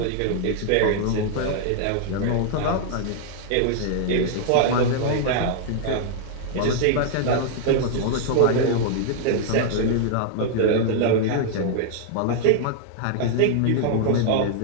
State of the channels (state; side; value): different; both; correlation -0.01